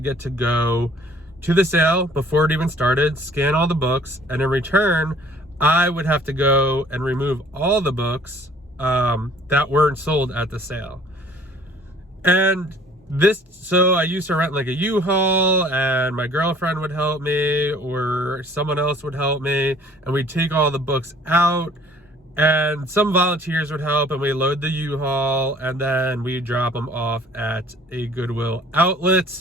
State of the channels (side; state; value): both; normal; correlation 0.54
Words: to go to the sale before it even started, scan all the books, and in return I would have to go and remove all the books that weren't sold at the sale. And so I used to rent like a U-Haul, and my girlfriend would help me or someone else would help me, and we'd take all the books out, and some volunteers would help, and we load the U-Haul, and then we drop them off at a Goodwill